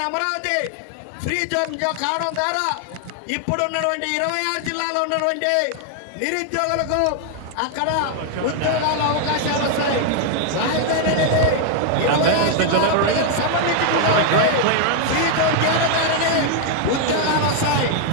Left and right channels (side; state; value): both; different; correlation 0.00